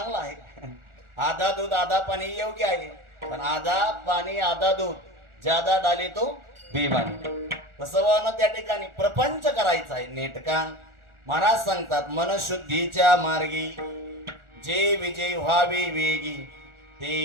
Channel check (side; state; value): left; late; 1.4 ms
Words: आहे. आधा दूध आधा पाणी योग्य आहे. पण आधा पाणी आधा दूध ज्यादा डाले तो बेमानी. तसं त्या ठिकाणी प्रपंच करायचा आहे नेटका. महाराज सांगतात मनशुद्धीच्या मार्गी जे विजय व्हावे वेगी